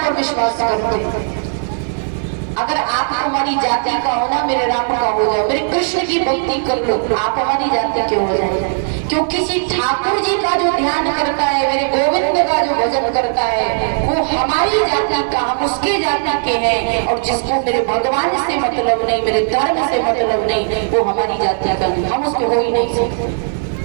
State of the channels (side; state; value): left; silent; digital silence